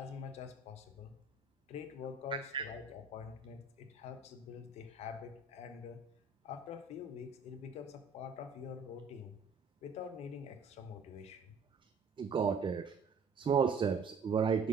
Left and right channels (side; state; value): left; quieter; 4.3 dB